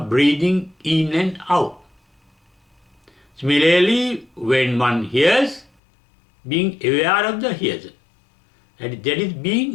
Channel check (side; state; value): right; drops out; at 5.7 s